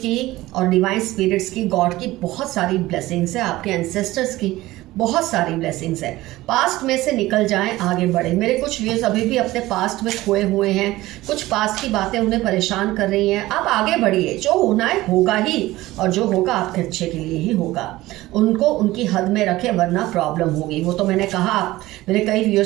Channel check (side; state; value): left; quieter; 17.7 dB